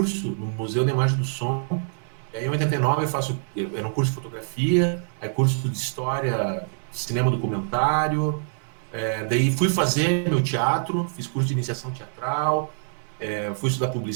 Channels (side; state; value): left; silent; digital silence